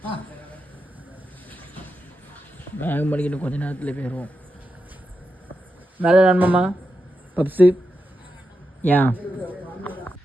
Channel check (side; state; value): both; normal; correlation 0.88